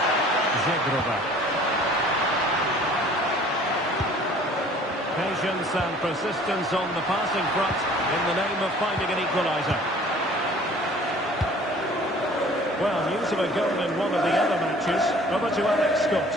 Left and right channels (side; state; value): both; normal; correlation 0.51